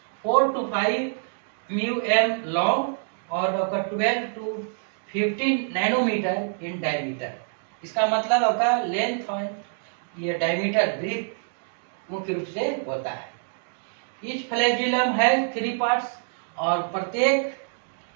4 to 5 μm लॉन्ग और आपका 12 to 15 नैनोमीटर इन डायमीटर। इसका मतलब आपका लेंथ और ये डायमीटर ब्रीथ मुख्य रूप से होता है। ईच फ्लैजिलम है 3 पार्ट्स, और प्रत्येक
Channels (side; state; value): left; silent; digital silence